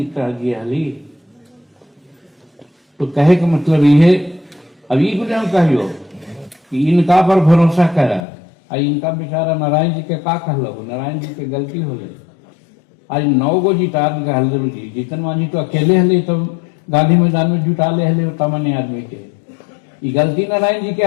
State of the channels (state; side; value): drops out; right; at 8.2 s